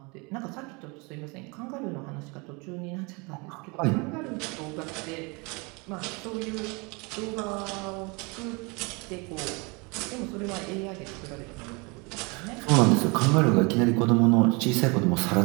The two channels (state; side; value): quieter; left; 28.9 dB